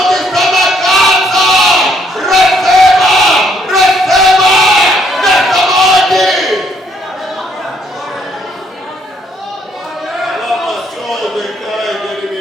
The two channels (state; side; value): normal; both; correlation 0.68